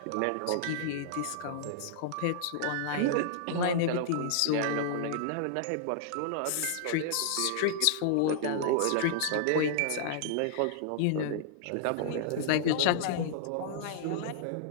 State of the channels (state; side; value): different; both; correlation -0.01